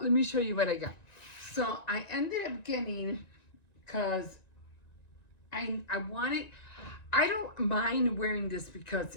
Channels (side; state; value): right; late; 1.9 ms